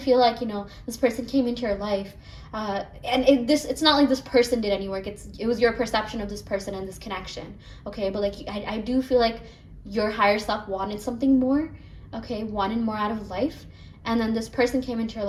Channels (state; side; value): identical; both; correlation 1.00